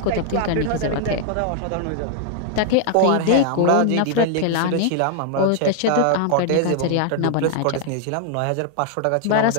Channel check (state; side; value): different; both; correlation 0.00